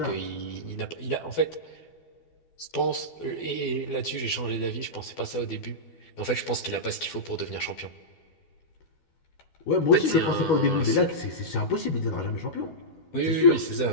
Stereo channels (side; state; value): right; late; 12 ms